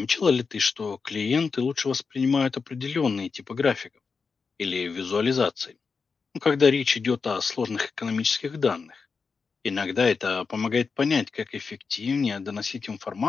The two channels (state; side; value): quieter; right; 5.0 dB